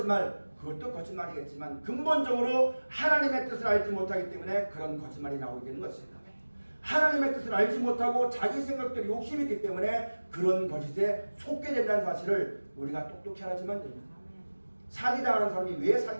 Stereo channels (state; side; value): inverted; both; correlation -1.00